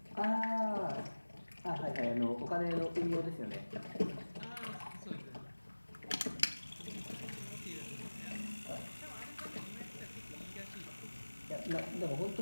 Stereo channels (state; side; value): inverted; both; correlation -1.00